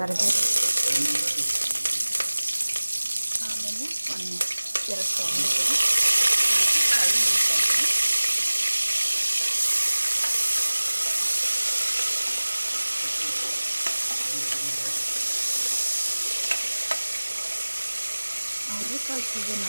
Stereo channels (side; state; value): both; inverted; correlation -1.00